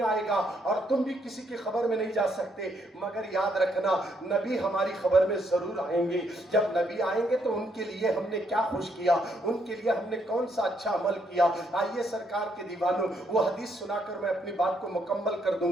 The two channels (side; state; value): both; normal; correlation 0.73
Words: آئے گا اور تم بھی کسی کی خبر میں نہیں جا سکتے، مگر یاد رکھنا نبی ہماری خبر میں ضرور آئیں گے۔ جب نبی آئیں گے تو ان کے لیے ہم نے کیا خوش کیا، ان کے لیے ہم نے کون سا اچھا عمل کیا۔ آئیے سرکار کے دیوانوں، وہ حدیث سنا کر میں اپنی بات کو مکمل کر دوں